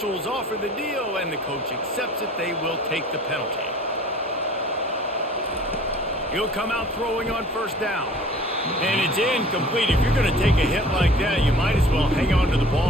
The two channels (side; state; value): both; normal; correlation 0.48